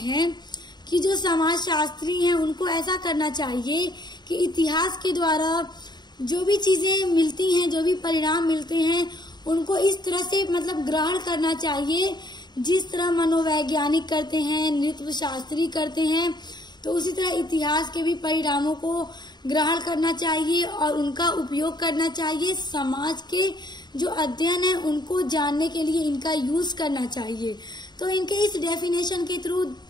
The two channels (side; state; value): right; late; 0.21 ms